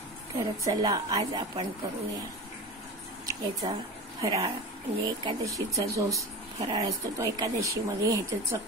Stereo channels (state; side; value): normal; both; correlation 0.29